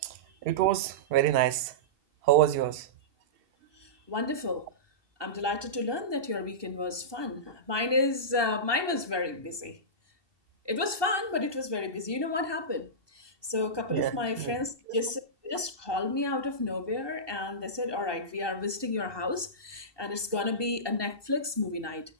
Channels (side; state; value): left; late; 2.7 ms